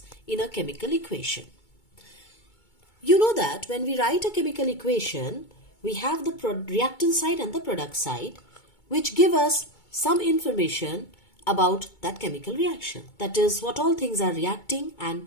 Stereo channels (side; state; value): right; late; 2.2 ms